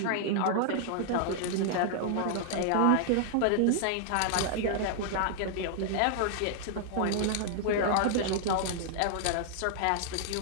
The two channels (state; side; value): different; both; correlation -0.01